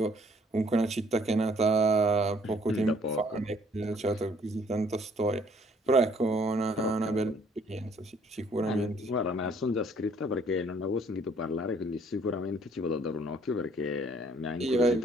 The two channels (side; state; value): both; normal; correlation 0.61